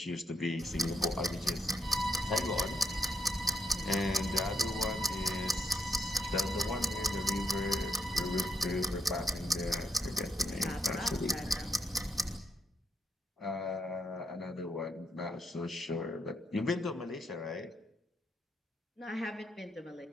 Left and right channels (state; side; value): normal; both; correlation 0.78